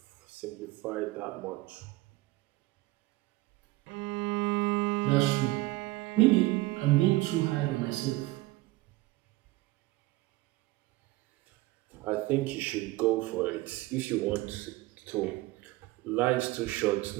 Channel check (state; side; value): quieter; left; 19.3 dB